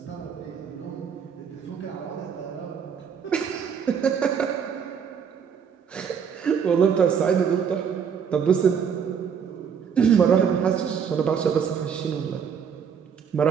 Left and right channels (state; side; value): quieter; left; 7.1 dB